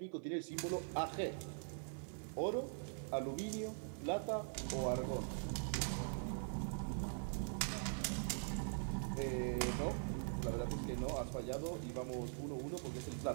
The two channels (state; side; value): silent; left; digital silence